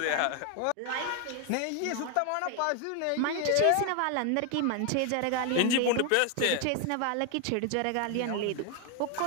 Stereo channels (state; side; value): different; both; correlation 0.01